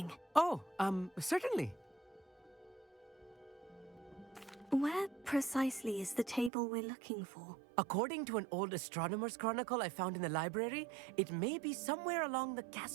Oh, certainly. Where precisely is the table we're looking for? According to an old astronomer's chronicle I found in the library, it may be somewhere along the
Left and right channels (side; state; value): left; drops out; at 6.5 s